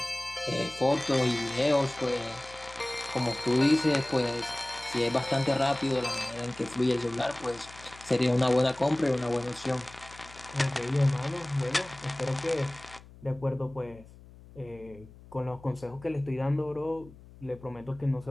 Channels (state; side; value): noise; left; hum, 21 dB below the sound